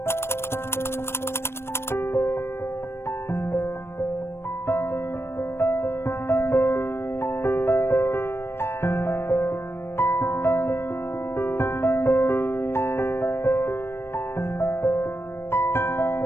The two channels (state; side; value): late; right; 0.12 ms